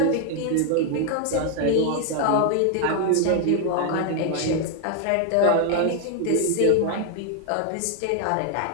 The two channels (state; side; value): different; both; correlation 0.00